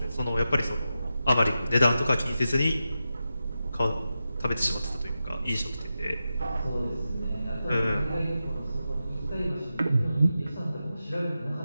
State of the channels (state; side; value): inverted; both; correlation -0.91